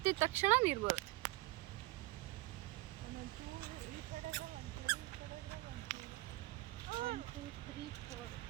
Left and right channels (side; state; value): left; quieter; 20.0 dB